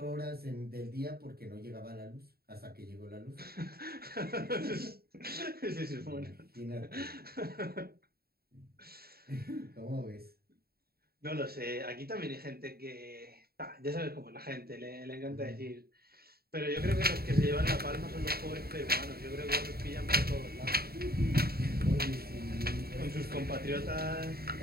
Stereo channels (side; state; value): left; late; 0.45 ms